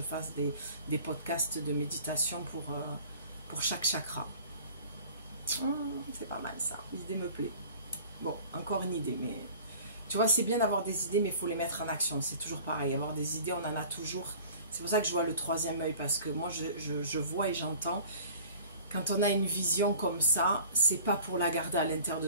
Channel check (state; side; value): inverted; both; correlation -0.46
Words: fasse des podcasts de méditation pour chaque chakra. C'est pas mal ça, l'idée me plaît. Bon, encore une idée, mais tu vois, c'est bien d'avoir des idées, mais il faut les mettre en action, c'est toujours pareil, avoir des idées, on en a toujours. C'est pour ça que je vois le troisième œil, parce que moi je vois et j'entends. Quand on a une vision comme ça, c'est pas pour la garder à l'intérieur de